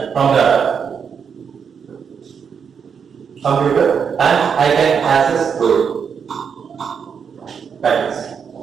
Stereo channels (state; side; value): quieter; left; 6.8 dB